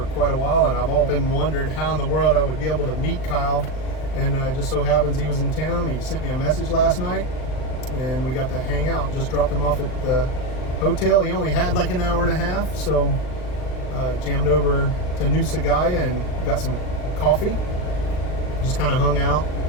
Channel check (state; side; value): late; right; 39 ms